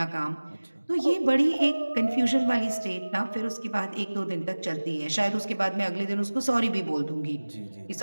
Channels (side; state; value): both; inverted; correlation -1.00